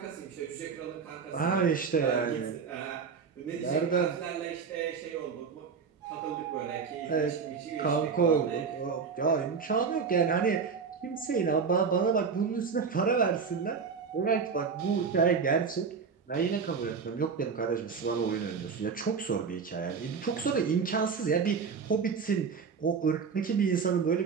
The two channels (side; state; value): left; quieter; 5.7 dB